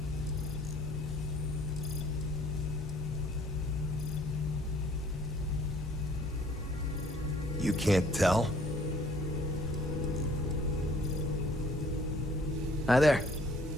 You can't tell? Hi there.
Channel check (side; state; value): both; normal; correlation 0.58